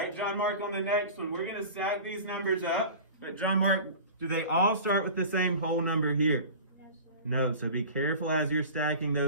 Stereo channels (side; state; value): both; inverted; correlation -0.36